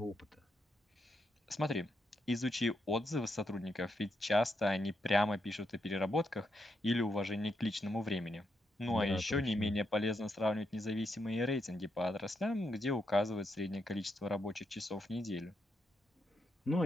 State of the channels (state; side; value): normal; both; correlation 0.81